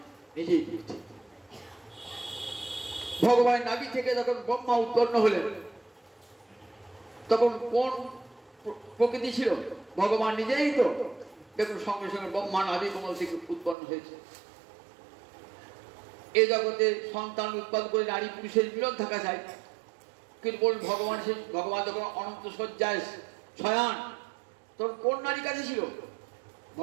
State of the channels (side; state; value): left; drops out; at 13.8 s